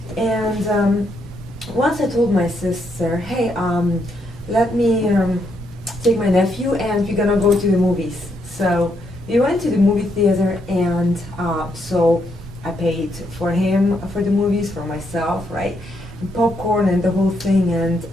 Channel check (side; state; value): both; normal; correlation 0.76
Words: and once I told my sister, hey, let me take my nephew and we're gonna go to the movies. So we went to the movie theater, and so I paid for him for the movies, for myself, right? Popcorn and the whole thing, and